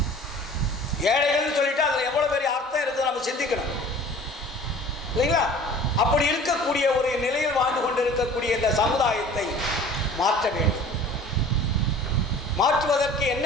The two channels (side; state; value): both; normal; correlation 0.46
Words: ஏழைகள்னு சொல்லிட்டு அதில் எவ்வளோ பெரிய அர்த்தம் இருக்குது நம்ம சிந்திக்கணும் இல்லைங்களா? அப்படி இருக்கக்கூடிய ஒரு நிலையில் வாழ்ந்து கொண்டு இருக்கக்கூடிய இந்த சமுதாயத்தை மாற்ற வேண்டும். மாற்றுவதற்கு என்ன